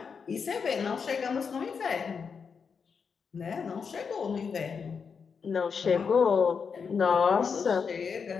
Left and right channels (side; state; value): right; quieter; 5.9 dB